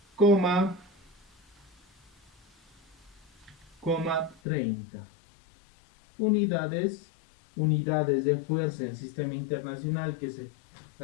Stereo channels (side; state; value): right; drops out; at 4.4 s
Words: coma 30 unidades de fuerza en sistema internacional, que es